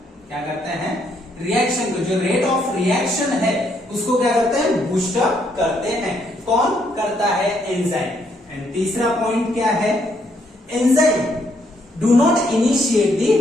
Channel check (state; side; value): normal; both; correlation 0.72